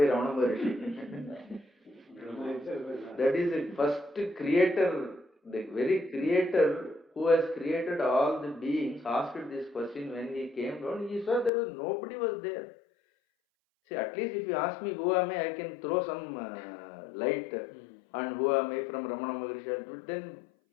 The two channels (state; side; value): drops out; right; at 11.5 s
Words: Ramana Maharishi. That is the first creator, the very creator who has created all the beings asked this question when he came down. He saw there was nobody was there. See, at least if you ask me who am I can throw some light on who am I from Ramana Maharishi. But then